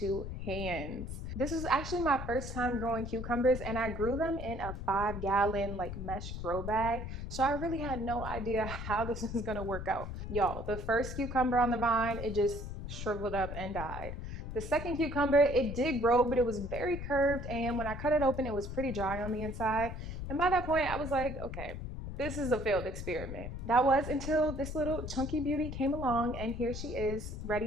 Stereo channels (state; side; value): noise; left; rumble, 7 dB below the sound